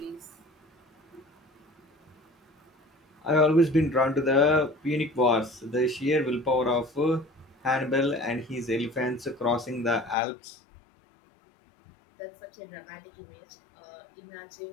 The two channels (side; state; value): right; drops out; at 10.2 s